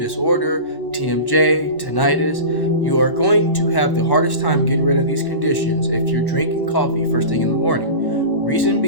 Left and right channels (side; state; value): right; late; 1.0 ms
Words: TMJ, tinnitus, you are going to have the hardest time getting rid of these conditions if you're drinking coffee first thing in the morning. Reason